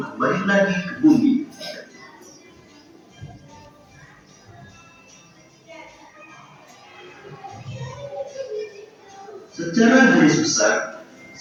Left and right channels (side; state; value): both; identical; correlation 1.00